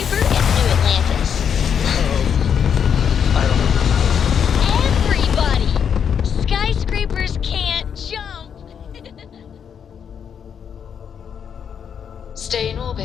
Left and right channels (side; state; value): right; quieter; 7.7 dB